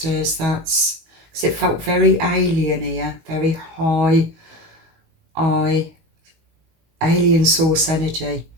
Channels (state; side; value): late; left; 19 ms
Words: That's because it felt very alien here, very high alien source energy,